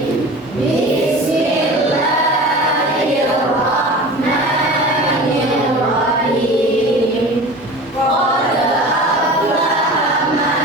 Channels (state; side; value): normal; both; correlation 0.36